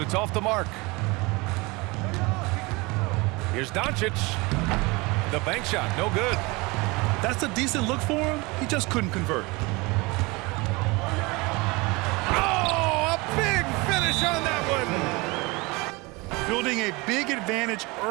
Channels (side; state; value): left; quieter; 25.0 dB